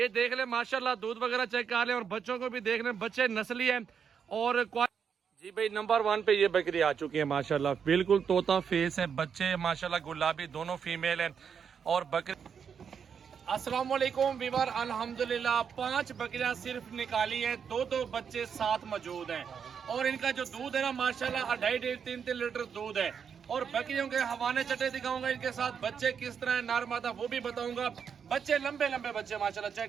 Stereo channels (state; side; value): quieter; left; 7.0 dB